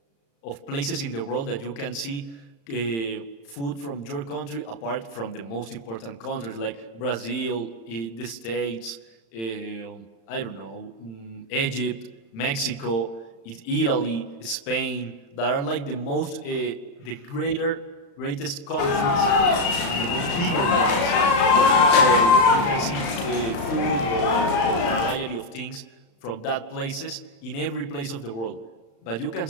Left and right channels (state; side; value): late; right; 35 ms